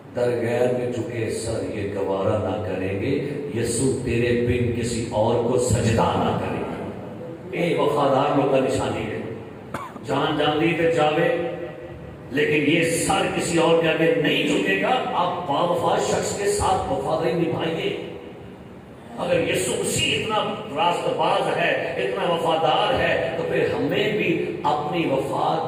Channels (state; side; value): identical; both; correlation 1.00